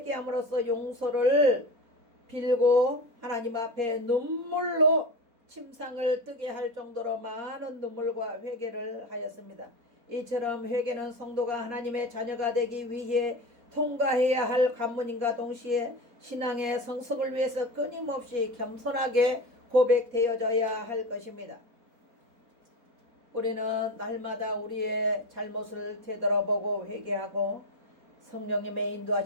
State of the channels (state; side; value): late; left; 4.2 ms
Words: 용서를 빌고 하나님 앞에 눈물로 침상을 뜨게 할 정도로 많은 눈물과 회개를 하였습니다. 이처럼 회개는 성도가 하나님의 자녀가 되기 위해 통과해야 할 관문인과 동시에 신앙의 성숙을 위해서 끊임없이 겸손하게 고백되어져야 할 것입니다. 우리는 날마다 우리의 잘못을 되돌아보고 회개하고 성령님의